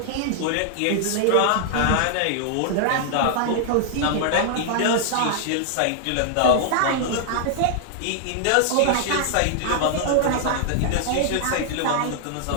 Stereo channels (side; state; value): both; different; correlation -0.01